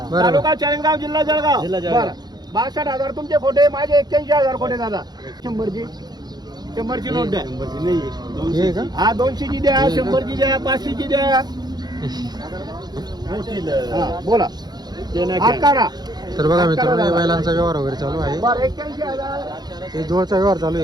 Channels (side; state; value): left; late; 0.20 ms